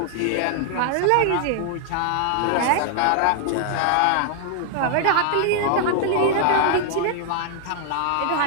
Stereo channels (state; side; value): different; both; correlation -0.01